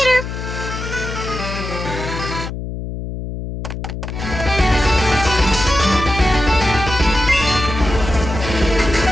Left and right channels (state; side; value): noise; left; hum, 7 dB below the sound